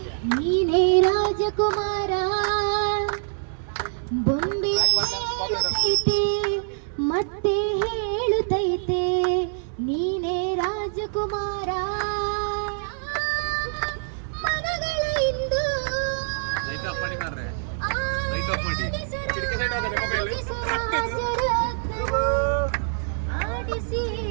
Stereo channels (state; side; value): silent; left; digital silence